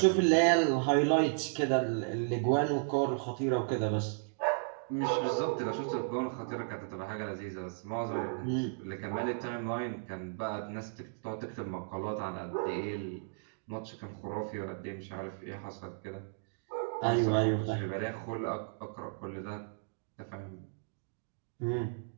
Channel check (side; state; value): left; silent; digital silence